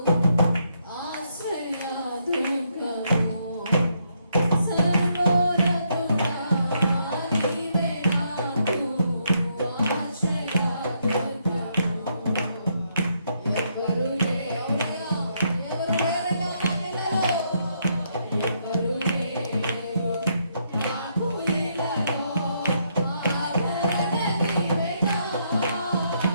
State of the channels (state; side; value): inverted; both; correlation -0.75